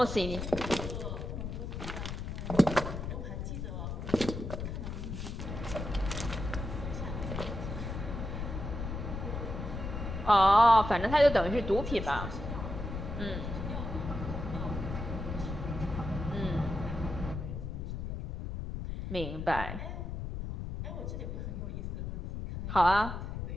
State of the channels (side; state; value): left; noise; rumble, 5 dB below the sound